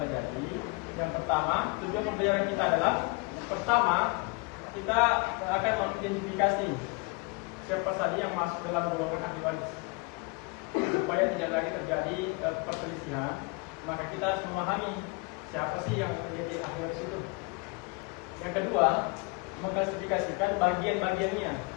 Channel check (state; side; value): quieter; right; 28.5 dB